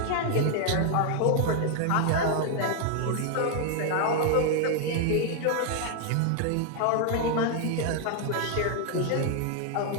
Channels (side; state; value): both; different; correlation 0.00